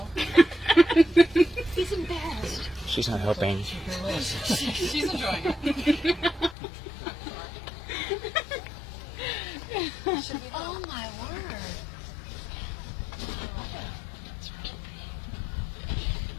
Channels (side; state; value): right; drops out; at 6.6 s